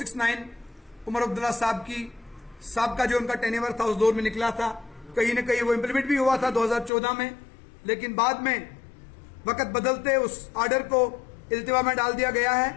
Omar Abdullah साहब का जो उनका टेन्योर था उस दौर में निकला था, कहीं न कहीं वो इम्प्लीमेंट भी हुआ था 2014 में, लेकिन बाद में वक्त बदलते उस ऑर्डर को इल्तिवा में डाल दिया गया है।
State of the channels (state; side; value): drops out; right; at 6.9 s